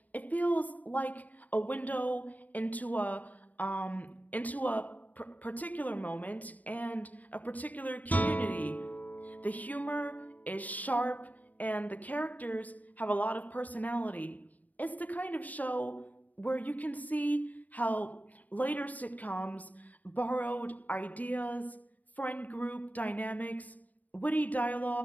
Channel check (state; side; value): late; right; 0.076 ms